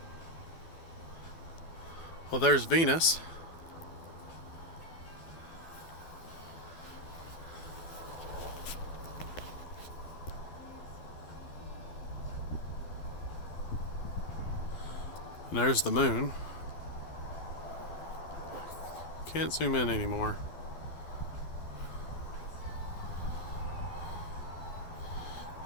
Well, there's Venus. And there's the moon. Can't zoom in anymore.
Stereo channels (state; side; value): late; right; 12 ms